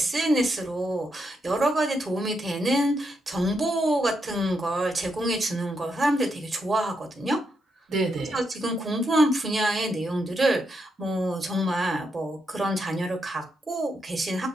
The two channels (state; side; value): normal; both; correlation 0.81